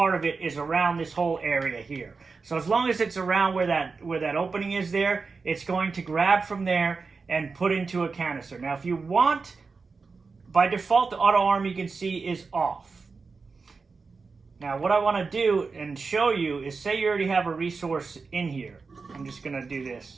of it is around this whole area here. So as long as it's around where that opening is there, it's going to grab from there and put into a canister. Now if you want, by default the auto arm you can see is off. Now what I want to do and show you is, say you already have a resource in here. I'm just going to do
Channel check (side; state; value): left; quieter; 4.6 dB